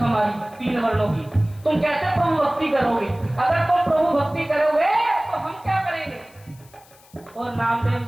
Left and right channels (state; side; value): noise; left; hiss, 27 dB below the sound